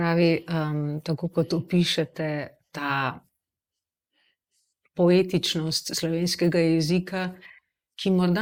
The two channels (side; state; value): both; identical; correlation 1.00